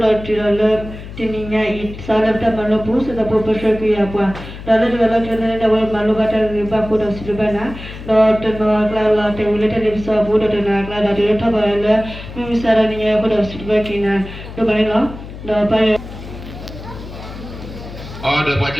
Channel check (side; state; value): left; noise; hum, 12 dB below the sound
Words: la tirala tininya it sala ta malo pu sa po pasha ku ya pa dala dala tena da wal malo bata ba ko da silbana do to no kla la te ule te lipsa bu do na kla da de ta ba la mi sara ni ya ko da silba kina do ba no do pa oh da pa